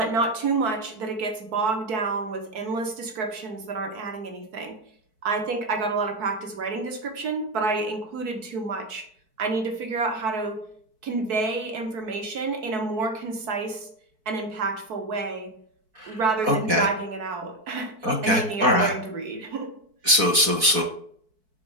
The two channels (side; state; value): left; late; 4.6 ms